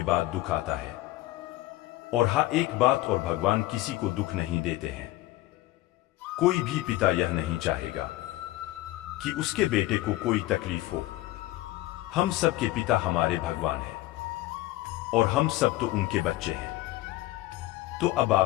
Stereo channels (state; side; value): quieter; right; 17.1 dB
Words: बाद दुख आता है। और हाँ, एक बात और, भगवान किसी को दुख नहीं देते हैं। कोई भी पिता यह नहीं चाहेगा कि उसके बेटे को कोई तकलीफ हो। हम सब के पिता हमारे भगवान हैं और हम सब तो उनके बच्चे हैं। तो अब